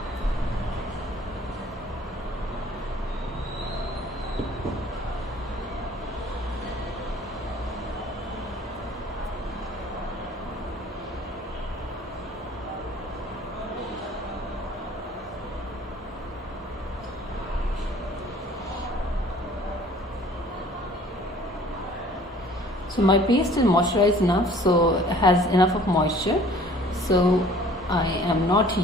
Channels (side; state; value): both; normal; correlation 0.52